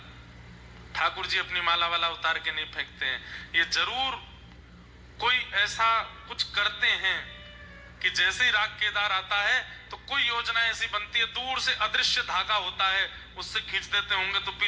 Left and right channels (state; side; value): identical; both; correlation 1.00